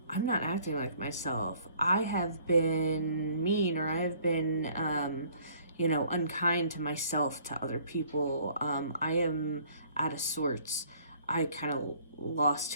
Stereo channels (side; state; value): both; inverted; correlation -0.58